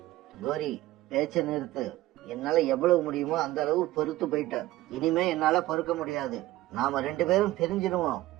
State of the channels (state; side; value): quieter; left; 16.7 dB